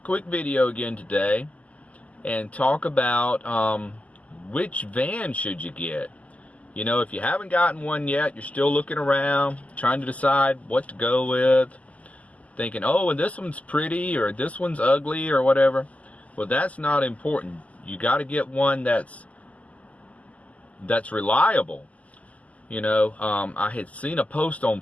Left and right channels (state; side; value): late; right; 0.071 ms